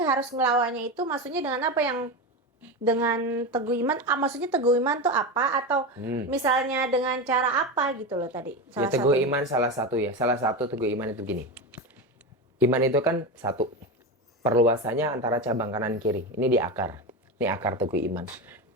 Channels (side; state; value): both; normal; correlation 0.19